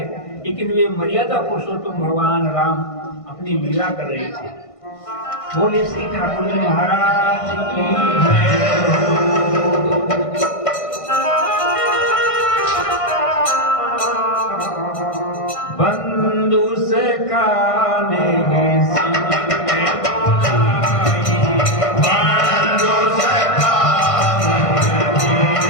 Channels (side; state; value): right; late; 1.5 ms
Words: लेकिन वे मर्यादा पुरुषोत्तम भगवान राम अपनी लीला कर रहे थे। बोले श्री ठाकुर जी महाराज की बंधु से काले